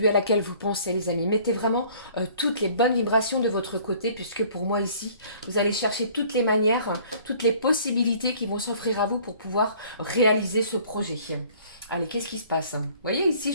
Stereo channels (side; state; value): both; inverted; correlation -0.54